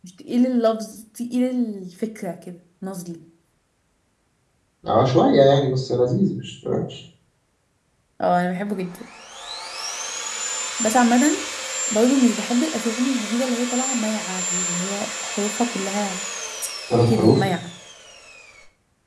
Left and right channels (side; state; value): both; identical; correlation 1.00